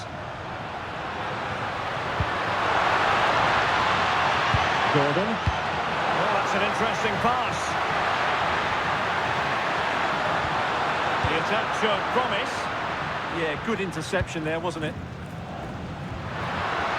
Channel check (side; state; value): both; identical; correlation 1.00